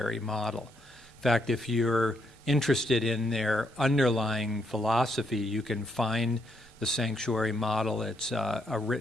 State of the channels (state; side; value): normal; both; correlation 0.75